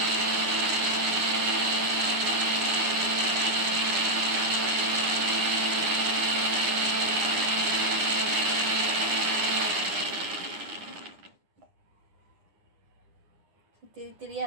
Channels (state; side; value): late; left; 9.9 ms